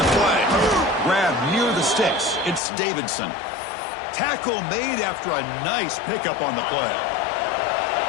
to play. Grab near the sticks. It's Davidson. Tackle made after a nice pickup on the play.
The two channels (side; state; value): right; drops out; at 2.6 s